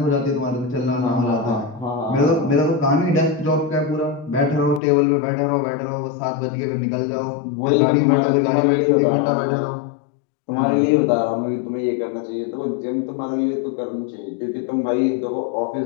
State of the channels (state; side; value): drops out; right; at 4.8 s